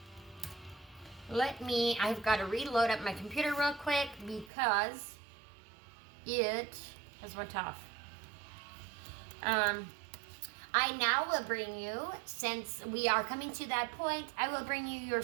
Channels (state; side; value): drops out; left; at 4.5 s